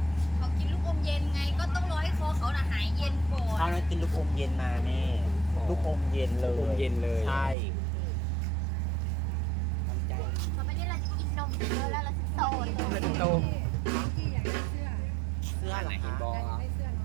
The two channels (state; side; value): drops out; left; at 7.6 s